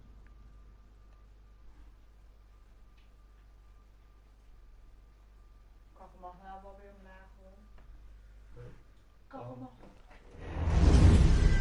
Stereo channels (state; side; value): identical; both; correlation 1.00